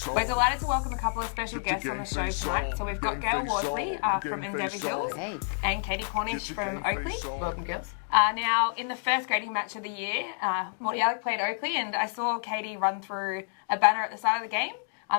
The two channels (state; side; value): silent; right; digital silence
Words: delighted to welcome a couple of special guests on the show tonight. So we've got Gail Worsley from Endeavour Hills and Katie Cornish from Oakley. Welcome, girls. Now, in the first grading match of the year, Morty Alec played Oakley, and I saw Katie run through a banner at the start of the game.